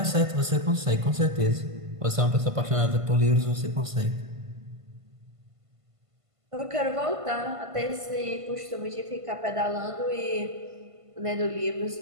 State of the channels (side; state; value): left; late; 1.5 ms